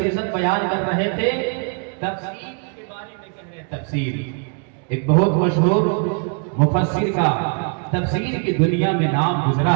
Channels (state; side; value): quieter; left; 38.8 dB